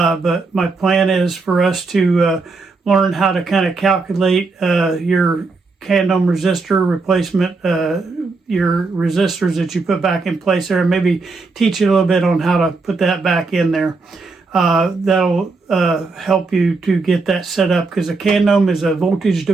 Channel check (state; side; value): quieter; left; 3.9 dB